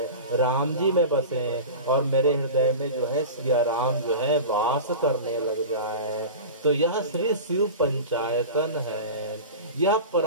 राम जी में बसे, और मेरे हृदय में जो है सिया राम जो है वास करने लग जाए। तो यह श्री शिव पंचायतन है। यह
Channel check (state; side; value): inverted; both; correlation -0.30